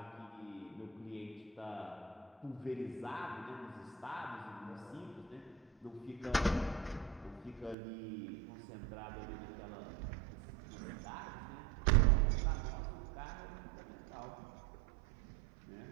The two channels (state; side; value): drops out; left; at 7.8 s